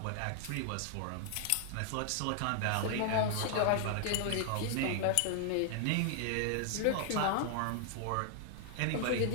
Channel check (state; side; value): different; both; correlation 0.00